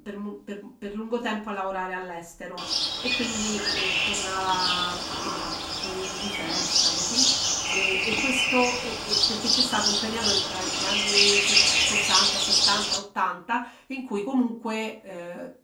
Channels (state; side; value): identical; both; correlation 1.00